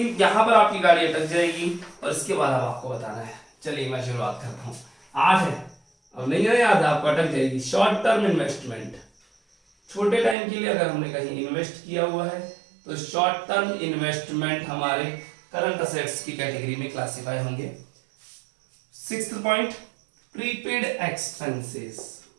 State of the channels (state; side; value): drops out; left; at 10.4 s